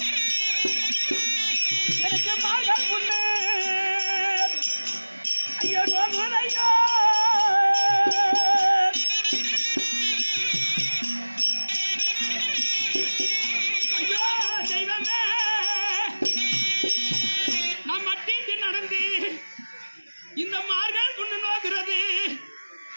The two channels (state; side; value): inverted; both; correlation -1.00